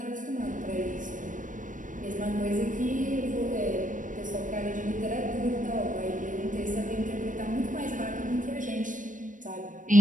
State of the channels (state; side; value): late; left; 0.38 ms